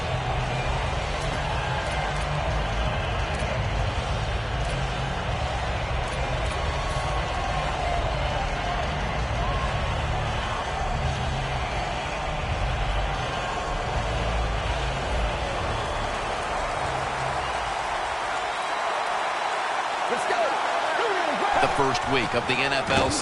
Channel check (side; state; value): both; identical; correlation 1.00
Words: The first week of the NFL